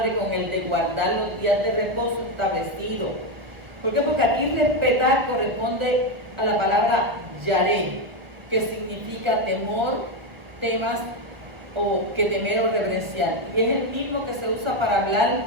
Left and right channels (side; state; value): left; late; 1.4 ms